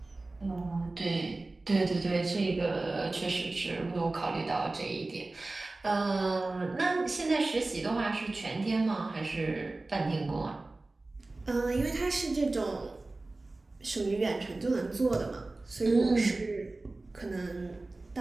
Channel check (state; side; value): quieter; left; 3.1 dB